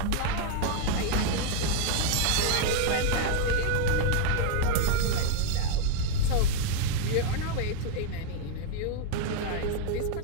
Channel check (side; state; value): both; different; correlation 0.01